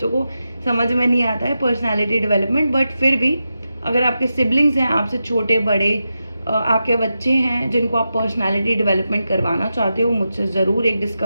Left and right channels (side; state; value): both; inverted; correlation -0.90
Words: को समझ में नहीं आता है पर्सनालिटी डेवलपमेंट। बट फिर भी अगर आपके सिबलिंग्स हैं, आपसे छोटे बड़े, आपके बच्चे हैं जिनको आप पर्सनालिटी डेवलपमेंट करवाना चाहते हो, मुझसे ज़रूर एक